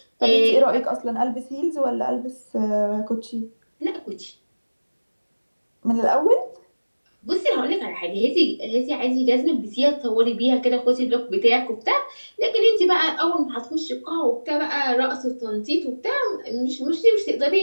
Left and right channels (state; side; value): inverted; both; correlation -1.00